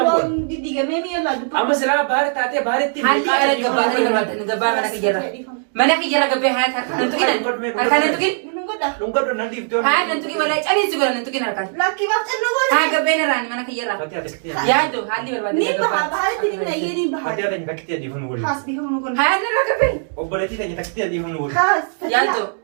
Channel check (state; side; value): silent; left; digital silence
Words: bu'u. Didigamee mi'a laaddu. Amma silaa baari taatee baaritti. Haalli ala gabbaa ta'e barbaada gabbaa mana kiyyarra. Mana kiyyarra gabbee haa harkaan tuqin. Harkaan tuqin. Lungadho nan dhiiftoon. Haa nan tuqin walaa caliinsi godha nan tuqin harkaan. Lakkii maaf xannoo godha. Haa gabbeen irraan mana kiyyarra. Fatiyaa takkitee. Yaaddo haalli barbaada Ni baha gabbaa. bahaatti ni mina iyyee ni baha. Fatiyaa tanya takkitee adiifamnu waliin. Haas bihamu kun. Haa irra gabbee. Obboleettii tanya takkitee adiifamnu waliin. Haas. Yaaddo.